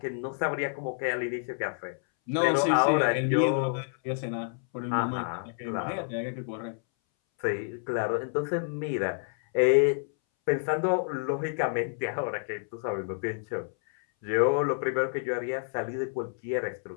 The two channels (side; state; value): right; silent; 59 dB below the other